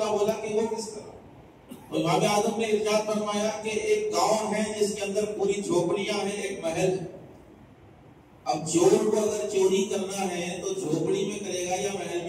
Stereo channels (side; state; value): both; identical; correlation 1.00